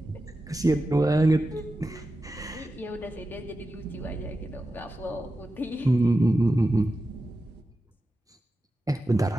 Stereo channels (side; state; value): both; normal; correlation 0.92